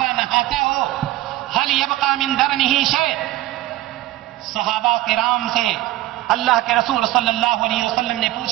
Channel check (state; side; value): quieter; left; 16.2 dB